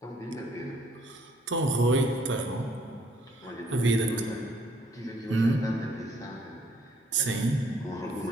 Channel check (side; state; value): both; normal; correlation 0.65